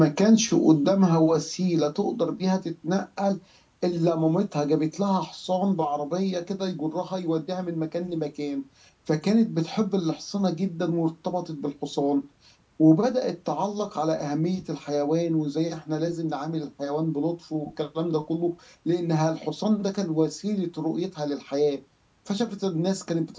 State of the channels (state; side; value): identical; both; correlation 1.00